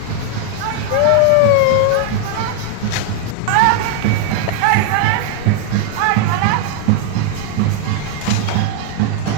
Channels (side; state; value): both; different; correlation 0.00